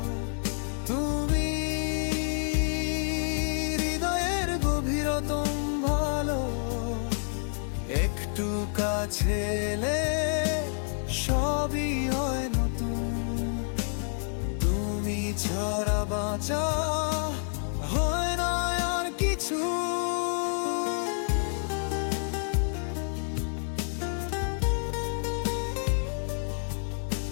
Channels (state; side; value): silent; right; digital silence